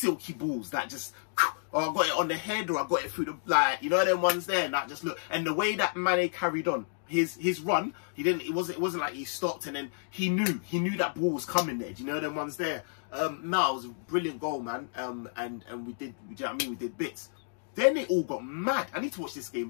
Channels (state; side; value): silent; right; digital silence